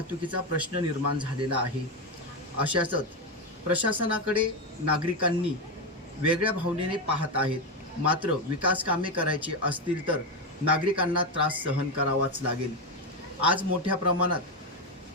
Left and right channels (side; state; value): both; normal; correlation 0.11